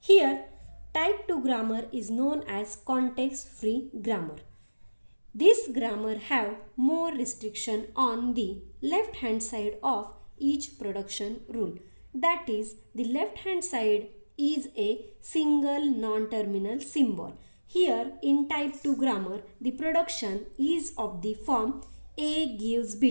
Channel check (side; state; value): both; inverted; correlation -1.00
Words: Here, type 2 grammar is known as context-free grammar. This grammar have more restriction on the left hand side of each production rule. That is, the left hand side is a single non-terminal symbol. Here in type 2 grammar, the production is of the form A gives